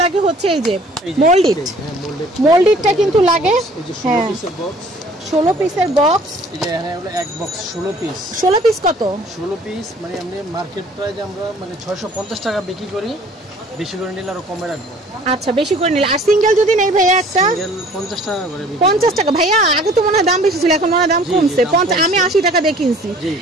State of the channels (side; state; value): both; normal; correlation 0.53